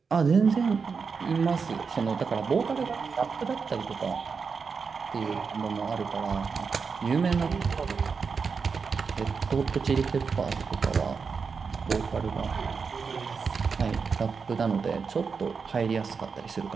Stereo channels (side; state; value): left; quieter; 5.4 dB